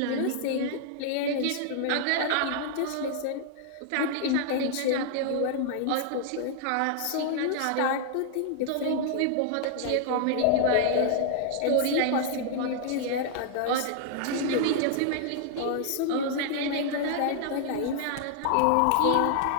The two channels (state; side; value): different; both; correlation 0.00